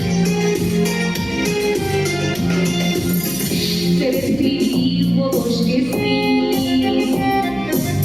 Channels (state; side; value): noise; right; hum, 17 dB below the sound